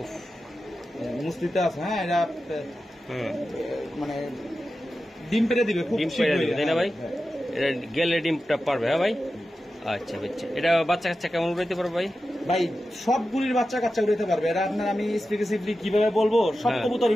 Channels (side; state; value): both; normal; correlation 0.92